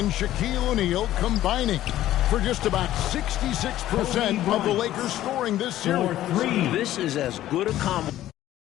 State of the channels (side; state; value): right; quieter; 13.6 dB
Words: Shaquille O'Neal combining for just about 66% of the Lakers scoring this series. This is as good a combo.